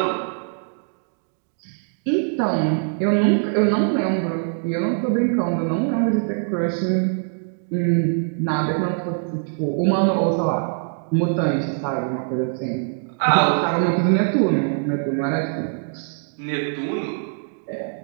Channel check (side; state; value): left; silent; 64 dB below the other